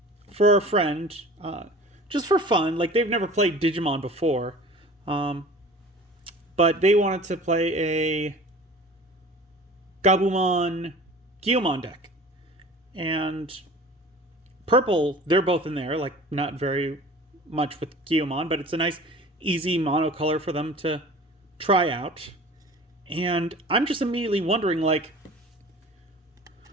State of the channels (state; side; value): normal; both; correlation 0.42